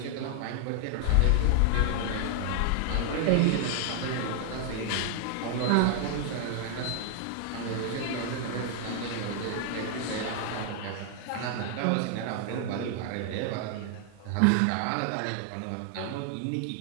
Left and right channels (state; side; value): different; both; correlation 0.00